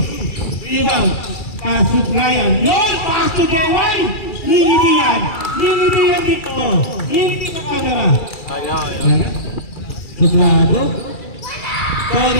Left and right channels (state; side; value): late; right; 2.3 ms